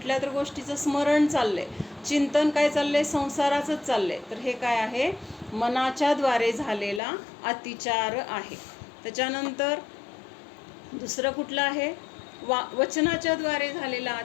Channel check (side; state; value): right; drops out; at 7.0 s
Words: तरी गोष्टीचं स्मरण चाललंय, चिंतन काय चाललंय, संसाराचंच चाललंय. तर हे काय आहे, मनाच्याद्वारे झालेला अतिचार आहे. त्याच्यानंतर दुसरं कुठलं आहे, वचनाच्या द्वारे झालेला